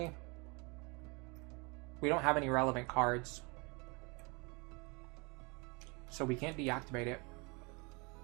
we don't have any relevant cards. So we can't deactivate it.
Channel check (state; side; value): quieter; left; 29.3 dB